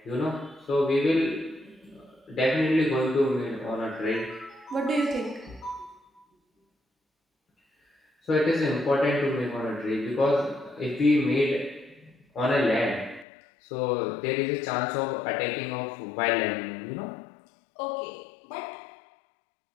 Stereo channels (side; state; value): right; drops out; at 13.2 s